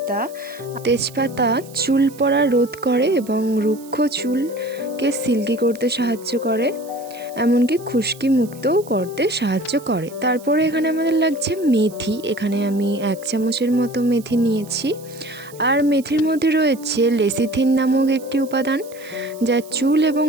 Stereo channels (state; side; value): noise; right; hiss, 21 dB below the sound